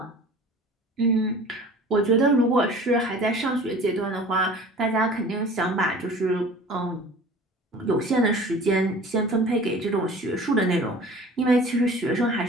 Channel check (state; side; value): normal; both; correlation 0.43